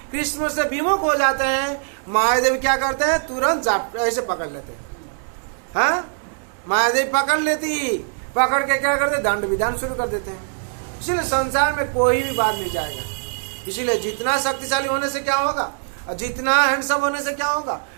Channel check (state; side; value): silent; left; digital silence